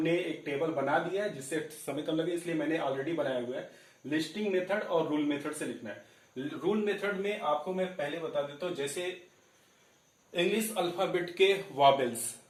एक टेबल बना दिया है, जिससे समय कम लगे इसलिए मैंने ऑलरेडी बनाया हुआ है। लिस्टिंग मेथड और रूल मेथड से लिखना है। रूल मेथड में आपको मैं पहले बता देता हूं, जैसे इंग्लिश अल्फाबेट के वॉवेल्स,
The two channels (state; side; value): identical; both; correlation 1.00